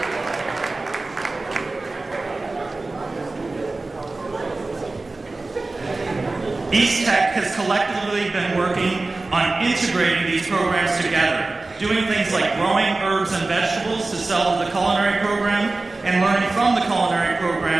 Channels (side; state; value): left; quieter; 3.3 dB